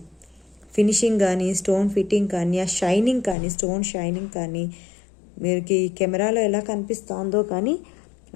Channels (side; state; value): right; drops out; at 3.4 s